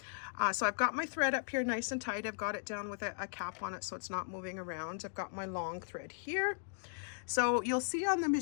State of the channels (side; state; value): right; silent; digital silence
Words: So I've got my thread up here nice and tight. I've got it down with a cap on it so it's not moving around. I've got my long thread here. So you'll see on the